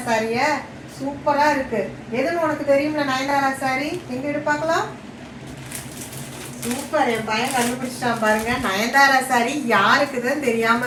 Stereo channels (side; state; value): both; identical; correlation 1.00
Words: சாரிய? சூப்பரா இருக்கு. எதுன்னு உனக்கு தெரியும்ல நயன்தாரா சாரி? எங்க எடு பார்க்கலாம். சூப்பர், என் பையன் கண்டுபிடிச்சிட்டான் பாருங்க. நயன்தாரா சாரி யாருக்குதான் தெரியாம